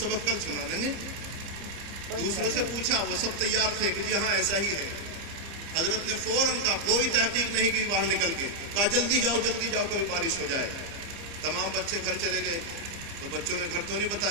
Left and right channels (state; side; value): late; left; 30 ms